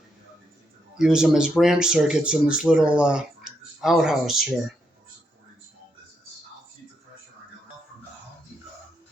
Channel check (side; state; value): both; normal; correlation 0.80